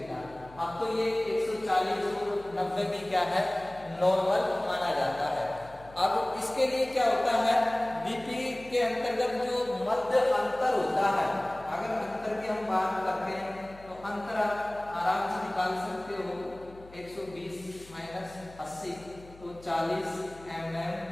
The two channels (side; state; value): left; noise; hum, 21 dB below the sound